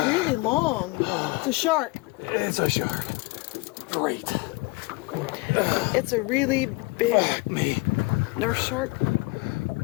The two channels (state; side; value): quieter; right; 24.4 dB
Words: long. It's a shark. It's a shark. Great. It's a really big Fuck me. nurse shark.